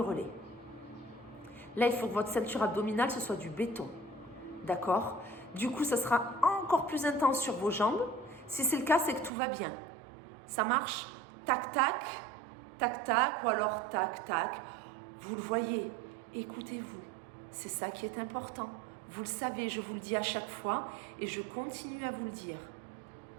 Là, il faut que votre ceinture abdominale, ce soit du béton. D'accord? Du coup, ça sera encore plus intense sur vos jambes. Si c'est le cas, c'est que tout va bien. Ça marche? Tac, tac, tac, tac, ou alors tac, tac. Vous le voyez, écoutez-vous. C'est ça qui est important. Vous le savez, je vous le dis à chaque fois et je continue à vous le dire.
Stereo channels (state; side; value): drops out; left; at 9.3 s